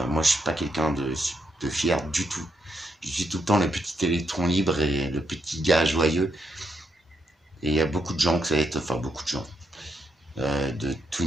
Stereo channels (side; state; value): both; normal; correlation 0.79